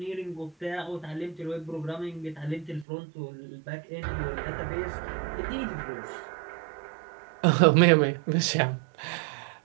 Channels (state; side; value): drops out; left; at 2.9 s